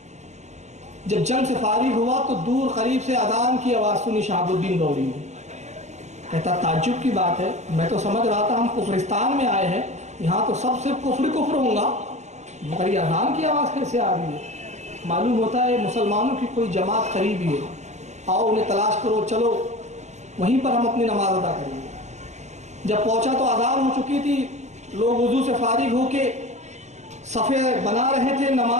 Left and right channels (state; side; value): late; left; 0.33 ms